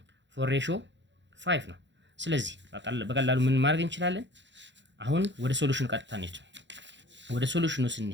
4:5 ነው። ስለዚህ በቀላሉ ምን ማድረግ እንችላለን? አሁን ወደ ሶሉሽኑ ቀጥታ እንሂድ። ወደ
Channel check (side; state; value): left; late; 0.53 ms